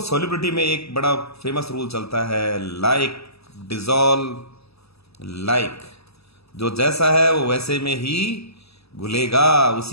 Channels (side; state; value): right; late; 0.78 ms